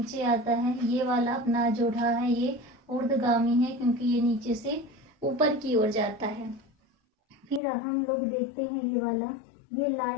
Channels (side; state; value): right; drops out; at 7.6 s